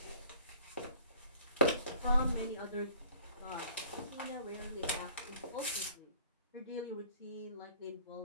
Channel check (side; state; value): both; inverted; correlation -0.52